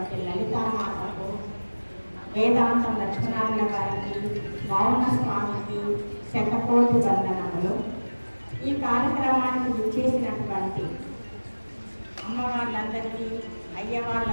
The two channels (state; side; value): inverted; both; correlation -1.00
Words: లలితామాతకు, వేదాంతం లక్ష్మణారాయణ గారికి, మౌన స్వామికి శతకోటి వందనములు. ఈ కార్యక్రమానికి విచ్చేసినటువంటి అమ్మవార్లందరికీ,